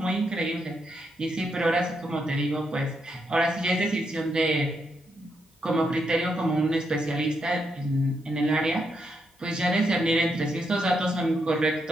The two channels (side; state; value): both; normal; correlation 0.80